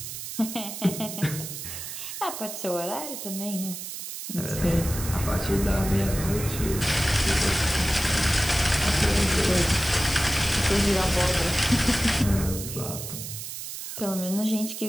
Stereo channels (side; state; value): right; noise; hiss, 8 dB below the sound